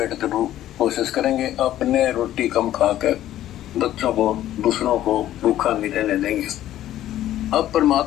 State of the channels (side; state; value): right; quieter; 12.9 dB